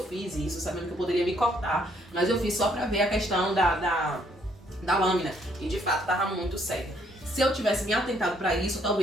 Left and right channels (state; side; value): normal; both; correlation 0.68